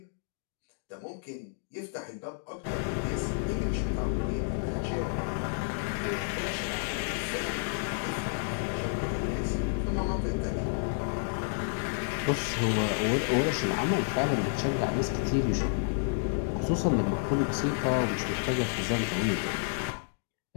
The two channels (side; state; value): right; silent; digital silence